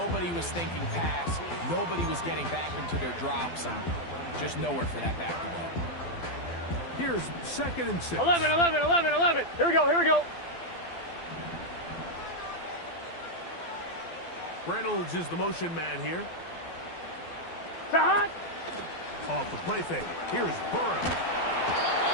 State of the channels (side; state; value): right; late; 12 ms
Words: was thinking pass. Nobody was getting back into their drops, and just nowhere for that back to go. Here's 2nd and 6. 11. Here we go. Reynolds is the motion man here. Stop. Off the play fake. Here's Burrow.